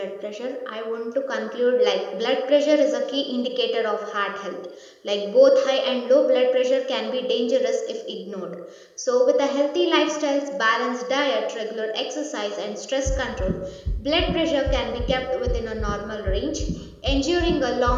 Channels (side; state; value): both; identical; correlation 1.00